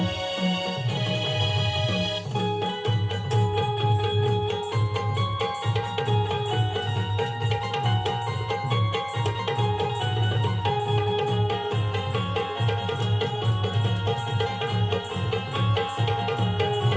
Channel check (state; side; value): identical; both; correlation 1.00